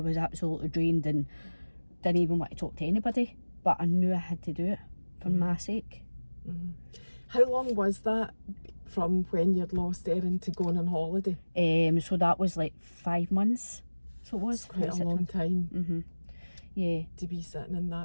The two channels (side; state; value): both; inverted; correlation -1.00